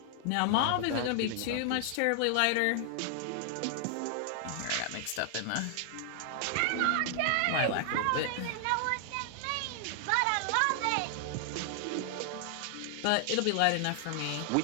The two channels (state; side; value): different; both; correlation 0.00